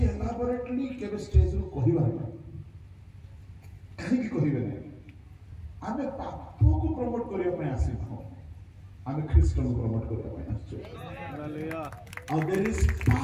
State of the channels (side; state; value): both; identical; correlation 1.00